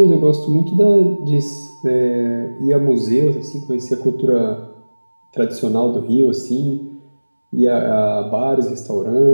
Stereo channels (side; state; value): both; inverted; correlation -1.00